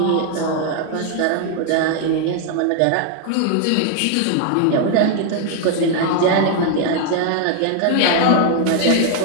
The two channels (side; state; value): both; different; correlation 0.00